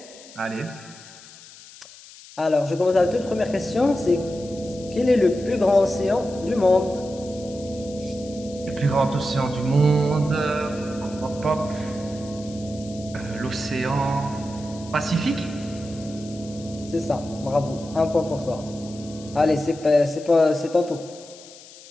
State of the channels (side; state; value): left; noise; hiss, 19 dB below the sound